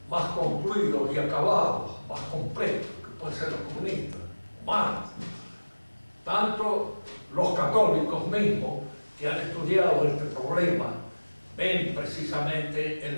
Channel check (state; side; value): inverted; both; correlation -1.00